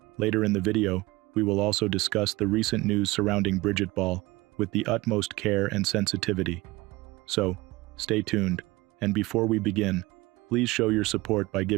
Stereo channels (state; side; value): quieter; left; 20.9 dB